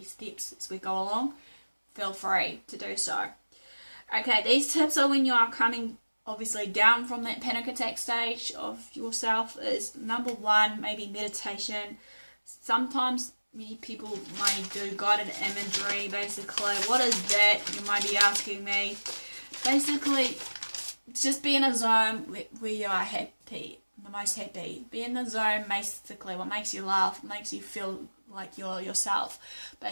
steps as we go along, feel free to do so. Okay, these tips are when you are coming obviously down from that panic attack stage of yourself is number 1, maybe meditation. Sometimes many people may do guided imagery, basically. What is that? You might be asking me. Basically, just be in a zone where you are happy, the most happy. Be in the zone, basically, what makes you laugh, makes you feel like yourself.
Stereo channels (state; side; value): inverted; both; correlation -1.00